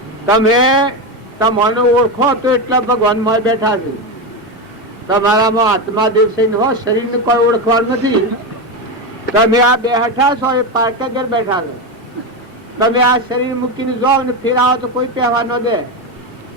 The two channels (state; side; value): normal; both; correlation 0.14